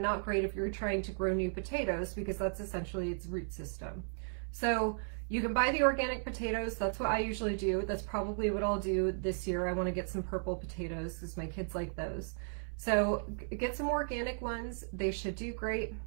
great if you're trying to grow new potatoes because that's essentially its root system. So you can buy the organic potatoes. That's what I usually do. That's probably what I'll do this year. I want to get some purple potatoes because my kids like those. So get some organic ones. They should do great.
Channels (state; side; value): silent; left; 54 dB below the other